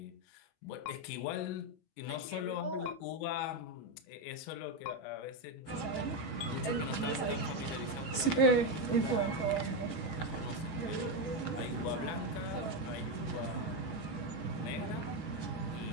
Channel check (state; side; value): late; right; 18 ms